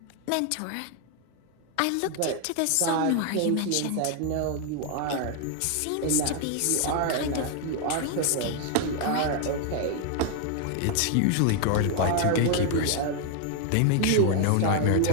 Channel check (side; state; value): both; different; correlation 0.01